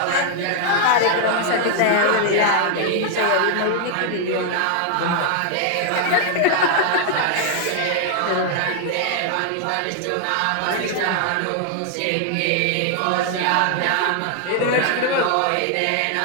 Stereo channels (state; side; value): different; both; correlation 0.00